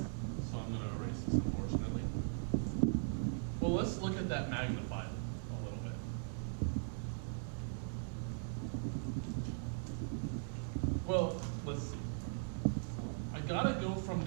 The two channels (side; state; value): left; silent; 51 dB below the other